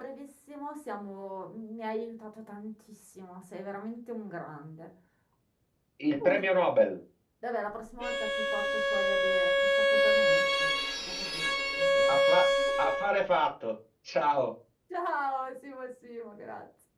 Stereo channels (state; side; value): identical; both; correlation 1.00